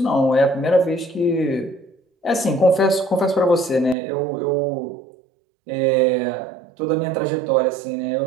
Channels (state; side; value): drops out; left; at 4.0 s